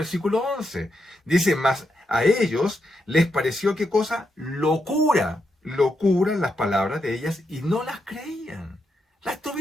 11. Dice, más a ellos les pareció qué cosa, locura las palabras de ellas y no las creían. Las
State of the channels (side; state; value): both; normal; correlation 0.83